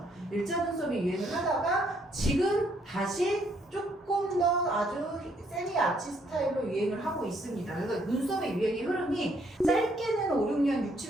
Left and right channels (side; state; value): both; normal; correlation 0.69